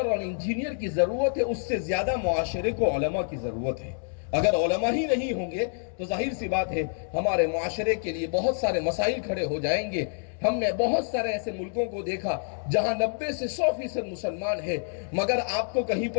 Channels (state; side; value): silent; right; digital silence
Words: اور انجینئر کی ضرورت ہے، اس سے زیادہ معاشرے کو علماء کی ضرورت ہے۔ اگر علماء ہی نہیں ہوں گے تو ظاہر سی بات ہے ہمارے معاشرے کے لیے بہت سارے مسائل کھڑے ہو جائیں گے۔ ہم نے بہت سارے ایسے ملکوں کو دیکھا جہاں 90 سے 100% مسلمان ہے، مگر آپ کو کہیں